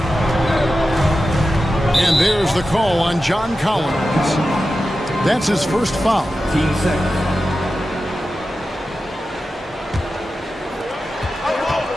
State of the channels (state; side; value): normal; both; correlation 0.92